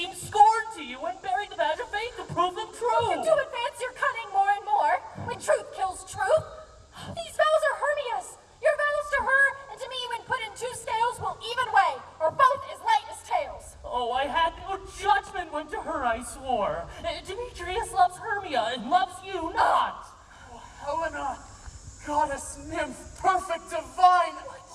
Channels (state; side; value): identical; both; correlation 1.00